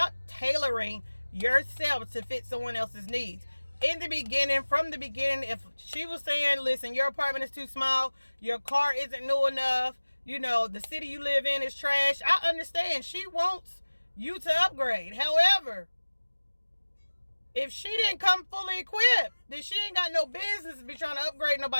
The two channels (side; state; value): both; inverted; correlation -1.00